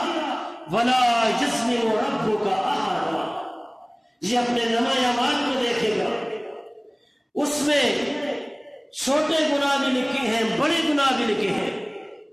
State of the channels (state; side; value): identical; both; correlation 1.00